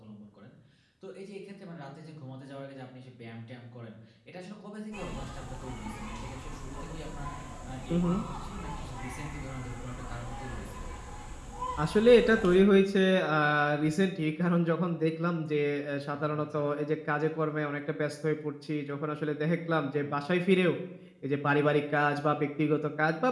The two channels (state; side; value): identical; both; correlation 1.00